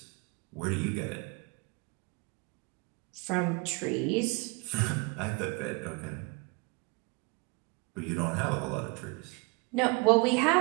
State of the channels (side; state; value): left; quieter; 28.6 dB